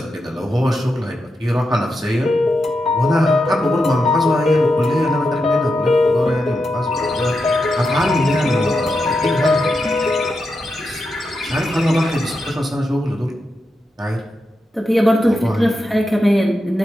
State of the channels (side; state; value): both; normal; correlation 0.87